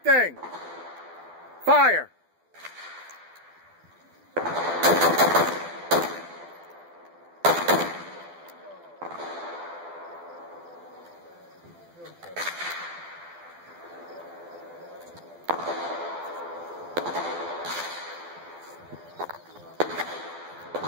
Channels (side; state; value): left; late; 12 ms